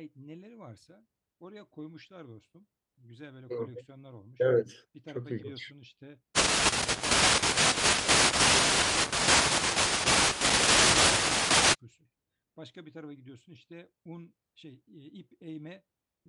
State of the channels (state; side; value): identical; both; correlation 1.00